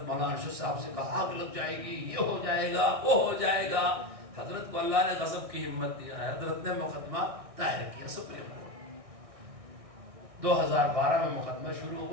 مولانا ارشد صاحب سے کہا آگ لگ جائے گی, یہ ہو جائے گا, وہ ہو جائے گا. حضرت کو اللہ نے غضب کی ہمت دیا ہے. حضرت نے مقدمہ دائر کیا سپریم کورٹ. 2012 میں مقدمہ شروع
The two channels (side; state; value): left; late; 1.6 ms